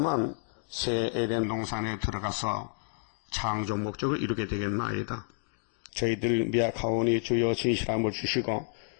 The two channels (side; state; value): right; silent; digital silence